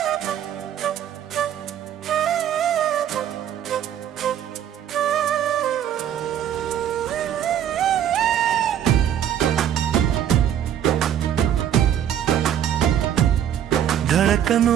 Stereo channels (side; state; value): left; quieter; 10.2 dB